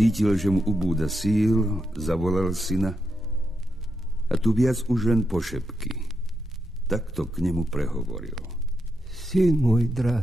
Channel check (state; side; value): normal; both; correlation 0.83